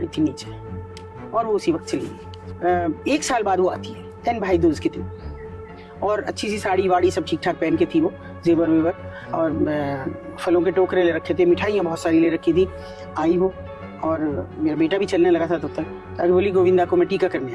थी नीचे और वो उसी वक्त चली गई। 1 साल बाद वो आती है, 10 भाई दूज के दिन, और अच्छी सी साड़ी वाड़ी सब ठीक ठाक पहन के थी वो, जेवर वेवर और फलों के टोकरे ले रखे थे, मिठाइयाँ बहुत सारी ले रखी थी। आई वो और मेरा बेटा भी चलने लगा था तब तक। अरे बोली गोविंदा को मैं टीका करने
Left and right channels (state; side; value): identical; both; correlation 1.00